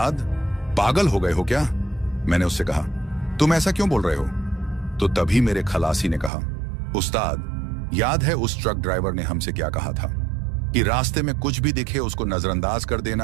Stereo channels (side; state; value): left; drops out; at 6.3 s